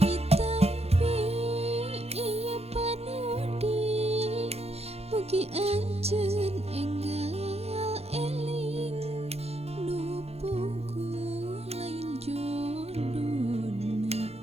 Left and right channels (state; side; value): late; left; 0.30 ms